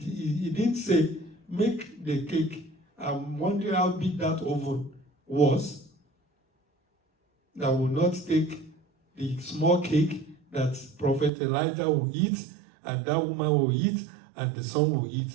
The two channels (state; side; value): drops out; left; at 11.3 s